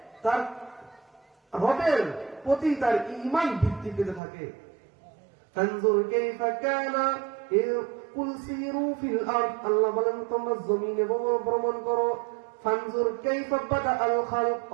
তার রবের প্রতি তার ঈমান বৃদ্ধি পেতে থাকে। ফানজুর কাইফা কানা কুল সিরু ফিল আরদ, আল্লাহ বলেন তোমরা জমিনে ভ্রমণ করো। ফানজুর কাইফা বাদা আল খালক,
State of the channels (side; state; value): left; drops out; at 4.2 s